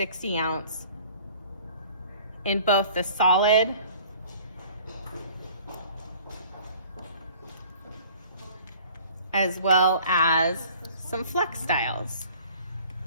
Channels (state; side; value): inverted; both; correlation -0.50